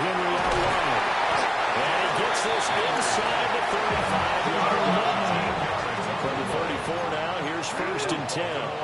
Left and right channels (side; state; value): both; identical; correlation 1.00